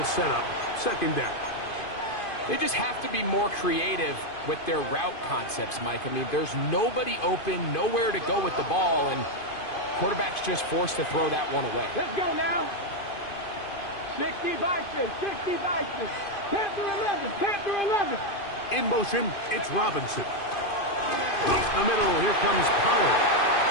set up 2nd down. They just have to be more creative with their route concepts, Mike. I mean, there's nobody open, nowhere to go with the ball, and quarterback's just forced to throw that one away. Let's go now. 60 Bison, 60 Bison. Panther 11, Panther 11. In motion, it's Robinson. Up the middle, here comes Pollard.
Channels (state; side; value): late; right; 2.5 ms